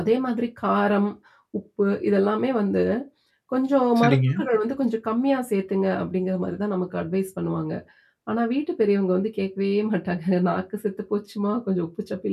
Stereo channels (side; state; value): both; identical; correlation 1.00